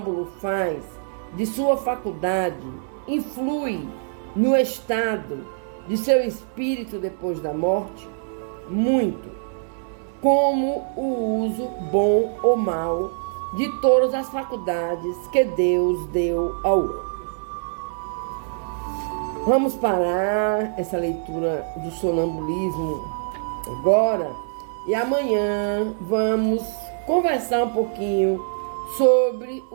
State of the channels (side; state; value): left; silent; digital silence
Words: faz de sua faculdade influi no estado de seu espírito depois da morte? Muito. Como o uso bom ou mau de todas as faculdades que Deus deu ao homem. Vamos parar essa leitura do sonambulismo agora e amanhã vamos conversar um pouquinho sobre